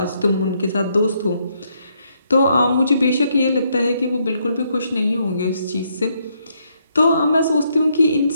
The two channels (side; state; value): both; inverted; correlation -0.74